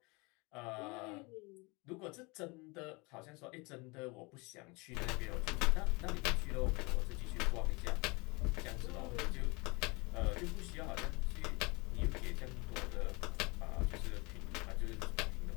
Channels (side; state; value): right; quieter; 27.3 dB